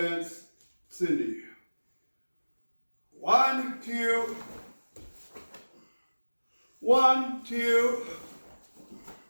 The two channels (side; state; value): both; inverted; correlation -1.00